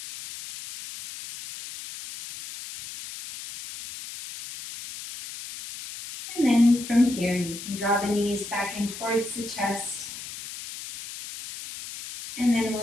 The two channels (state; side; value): noise; left; hiss, 11 dB below the sound